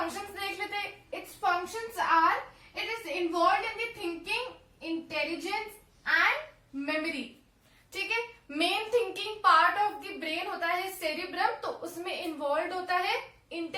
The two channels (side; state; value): both; identical; correlation 1.00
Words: देख लेते हैं। Its functions are, it is involve in the thinking, intelligence and memory. ठीक है, main thinking part of the brain होता है सेरिब्रम, तो उसमें इन्वॉल्व होता है